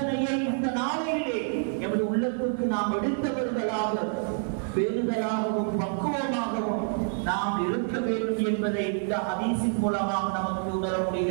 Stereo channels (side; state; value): left; silent; 60 dB below the other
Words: இந்த நாளையிலே எமது உள்ளத்துக்கு நாம் எடுத்தவர்களாக, பேருதலாகவும் பக்குவமாகவும் நாம் இருக்க வேண்டும் என்பதை இந்த ஹதீஸின் மூலமாக நமக்கு உணர